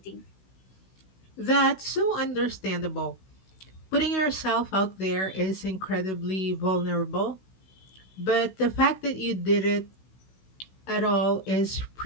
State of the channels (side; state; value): right; late; 16 ms